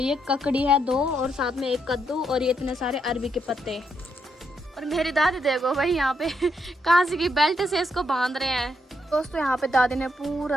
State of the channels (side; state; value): both; normal; correlation 0.78